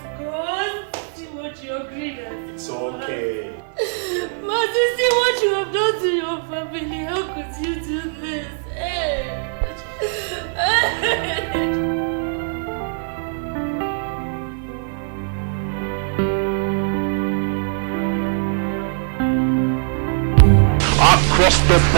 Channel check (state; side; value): silent; left; 64 dB below the other